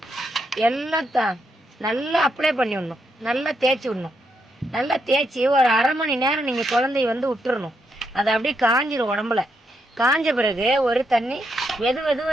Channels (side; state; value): both; normal; correlation 0.80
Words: எல்லாம் நல்லா அப்ளை பண்ணி விடணும். நல்லா தேய்ச்சி விடணும். நல்லா தேய்ச்சி ஒரு 1/2 மணி நேரம் நீங்கள் குழந்தைய வந்து விட்டுறணும். அதை அப்படியே காஞ்சிடும் உடம்புல. காஞ்ச பிறகு ஒரு தண்ணி